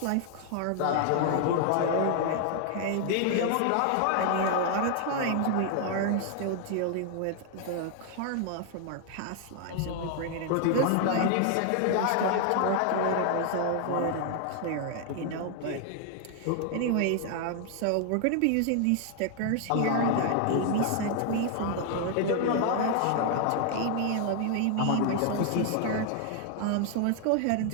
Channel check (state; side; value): different; both; correlation 0.00